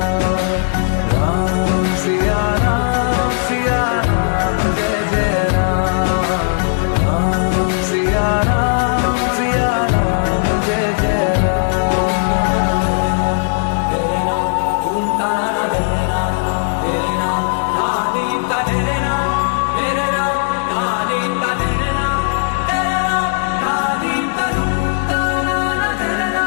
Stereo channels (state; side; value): silent; right; digital silence